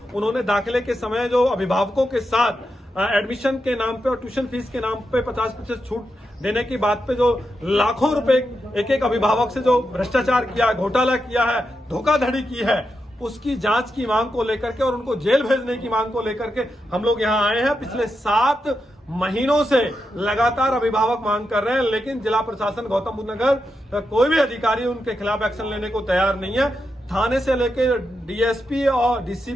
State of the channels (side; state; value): both; normal; correlation 0.86